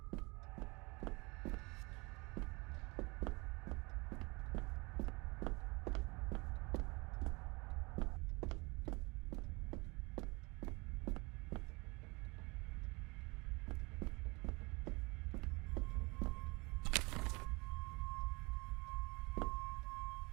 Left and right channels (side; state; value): left; quieter; 26.6 dB